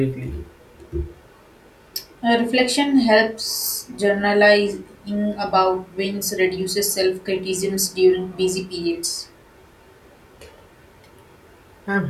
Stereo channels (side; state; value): both; identical; correlation 1.00